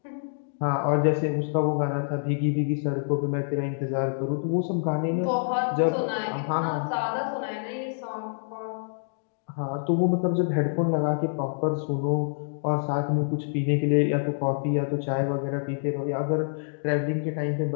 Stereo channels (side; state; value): right; silent; digital silence